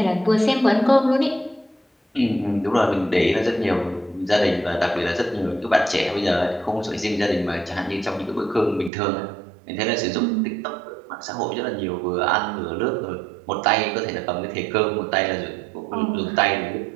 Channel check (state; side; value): drops out; left; at 8.9 s